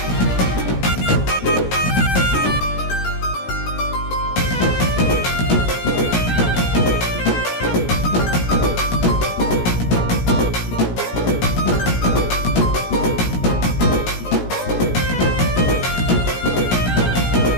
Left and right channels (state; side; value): late; right; 17 ms